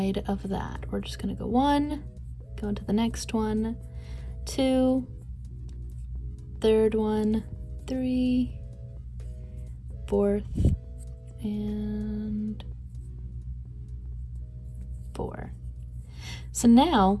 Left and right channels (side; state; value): both; identical; correlation 1.00